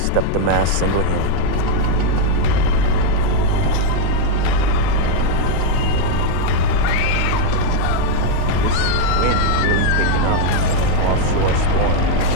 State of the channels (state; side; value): different; both; correlation 0.01